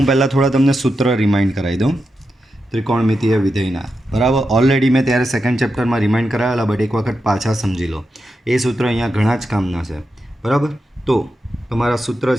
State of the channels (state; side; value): normal; both; correlation 0.88